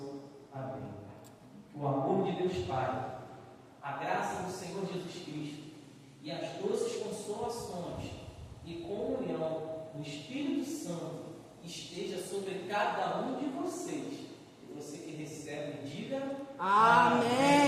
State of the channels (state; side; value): identical; both; correlation 1.00